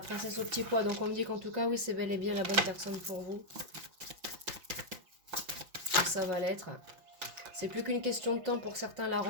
au petit pois, donc on me dit qu'en tout cas, oui, c'est bel et bien la bonne personne pour vous. ça va l'être. C'est plus qu'une question de temps pour certains la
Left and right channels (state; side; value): late; left; 5.8 ms